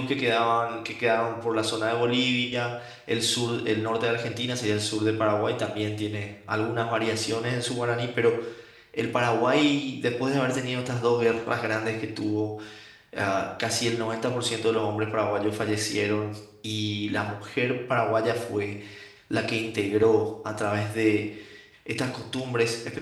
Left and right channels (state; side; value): identical; both; correlation 1.00